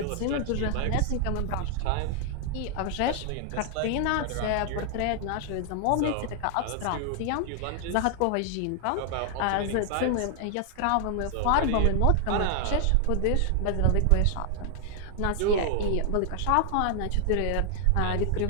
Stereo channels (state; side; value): different; both; correlation 0.00